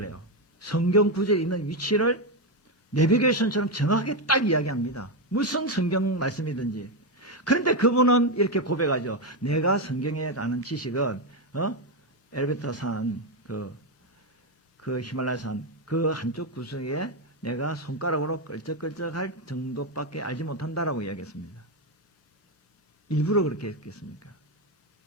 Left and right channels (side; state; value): both; normal; correlation 0.07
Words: 해요. 성경 구절에 있는 위치를 내비게이션처럼 정확하게 딱 이야기합니다. 무슨 성경 말씀이든지. 그런데 그분은 이렇게 고백하죠. 내가 성경에 아는 지식은 엘베타 산, 그 히말라야 산, 그 한쪽 구석에 내가 손가락으로 끌적끌적할 정도밖에 알지 못한다라고 이야기했습니다. 일부러 그렇게 했겠습니까?